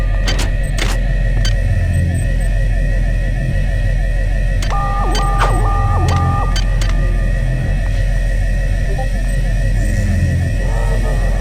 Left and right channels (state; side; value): identical; both; correlation 1.00